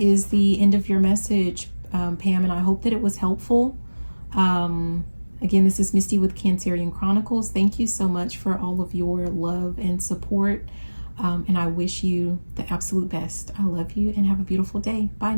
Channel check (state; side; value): inverted; both; correlation -1.00